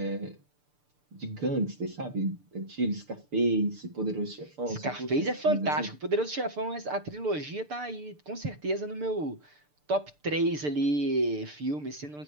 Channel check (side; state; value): left; late; 6.8 ms